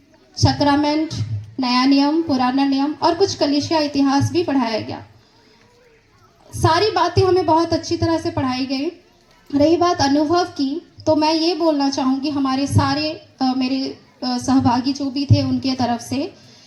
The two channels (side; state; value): both; identical; correlation 1.00